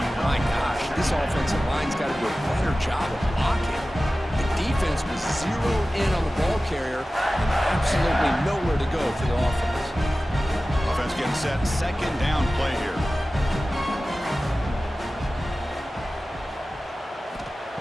My gosh, this offensive line's got to do a better job of blocking. The defense was zeroed in on the ball carrier and absolutely nowhere to go for the offense. Offense getting set. Second down play here.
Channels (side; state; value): both; normal; correlation 0.96